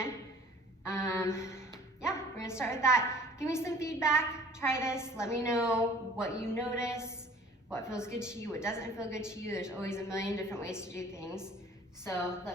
Yeah, we're gonna start with that. Give me some feedback, try this, let me know what you notice, what feels good to you, what doesn't feel good to you. There's always a million different ways to do things. So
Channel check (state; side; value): normal; both; correlation 0.50